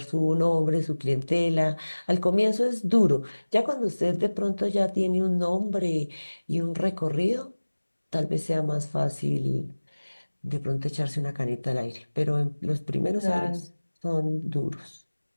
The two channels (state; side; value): inverted; both; correlation -1.00